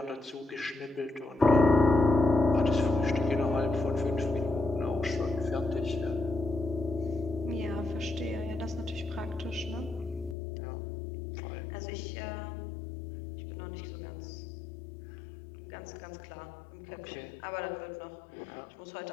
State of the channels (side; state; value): right; drops out; at 10.4 s